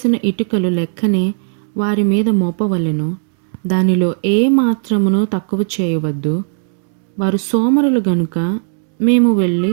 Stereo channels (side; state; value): left; silent; 66 dB below the other